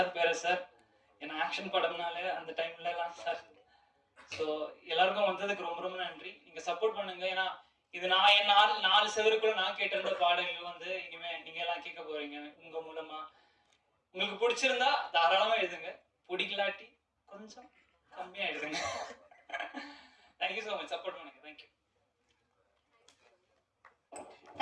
பேரஸ் சார், ஏன்னா ஆக்ஷன் படம்னால அந்த டைம்லலாம் சார். ஸோ எல்லாருக்கும் வந்ததுக்கு ரொம்ப ரொம்ப நன்றி. நீங்கள் சப்போர்ட் பண்ணுங்க. ஏன்னா இது நான் என் நாலு செவருக்குள்ள நான் கேட்டிருந்த பாடல்கள் வந்து இனிமே நீங்க எல்லாம் கேட்க போறீங்க உங்க மூலமா. உங்களுக்கு பிடிச்சிருந்தா தாராளமா எழுதுங்க, பிடிக்கலாட்டி கொஞ்சம் கம்மியா எழுதுங்க. தேங்க்யூ ஸோ மச், சப்போர்ட் பண்ணுங்க. தேங்க்யூ.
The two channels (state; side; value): identical; both; correlation 1.00